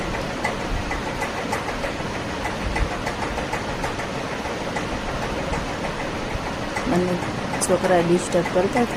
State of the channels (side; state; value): both; identical; correlation 1.00